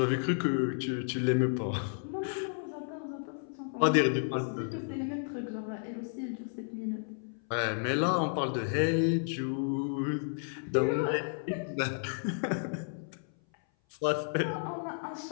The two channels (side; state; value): right; silent; 56 dB below the other